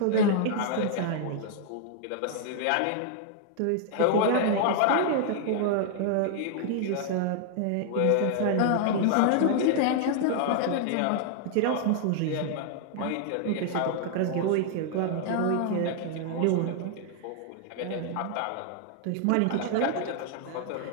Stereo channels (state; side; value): different; both; correlation 0.00